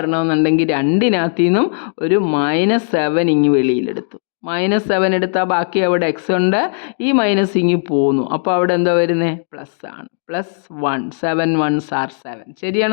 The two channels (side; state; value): right; silent; digital silence